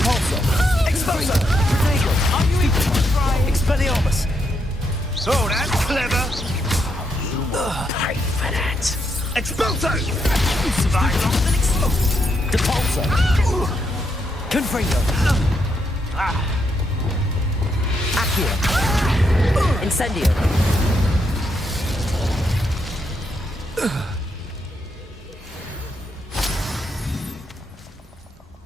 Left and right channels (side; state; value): both; normal; correlation 0.79